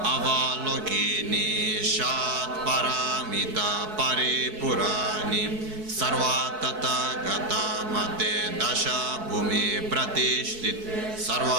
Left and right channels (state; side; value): late; left; 4.6 ms